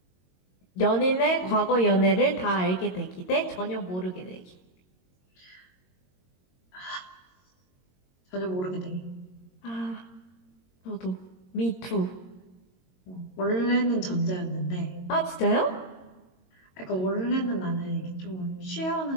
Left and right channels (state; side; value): late; right; 22 ms